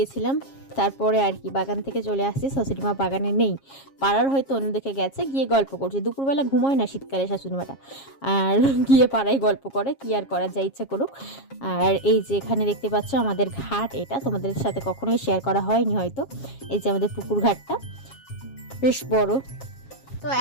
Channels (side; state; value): right; late; 7.4 ms